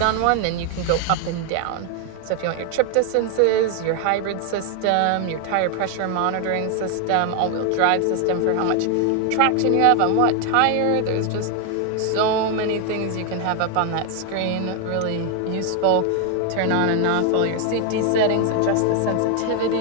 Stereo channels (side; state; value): both; different; correlation 0.00